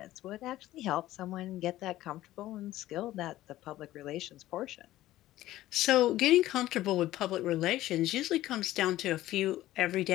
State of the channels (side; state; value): right; quieter; 15.2 dB